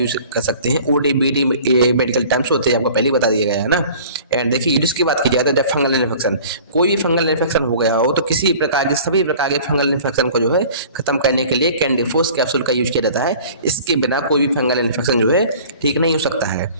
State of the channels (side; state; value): both; inverted; correlation -0.46